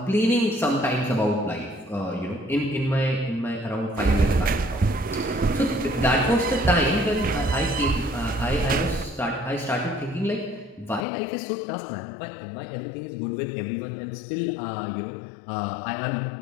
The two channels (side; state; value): right; drops out; at 11.1 s